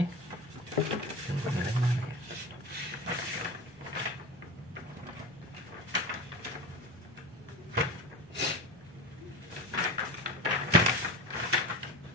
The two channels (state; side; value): normal; both; correlation 0.29